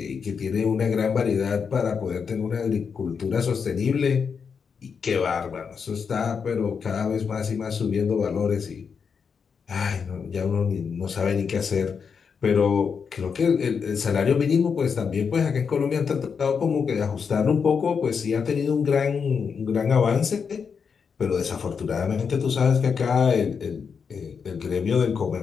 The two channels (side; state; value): right; quieter; 6.1 dB